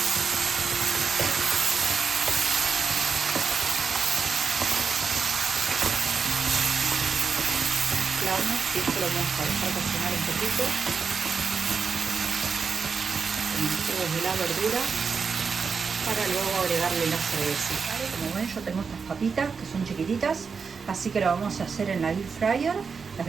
Y esto lo vamos a dejar cocinar un poquito con los jugos de la verdura para luego agregarle la cerveza. ¿Vale? Como ven, yo tengo estas papitas que son chiquititas, así que lo vamos a hacer en la air fryer. Las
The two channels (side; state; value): left; quieter; 5.5 dB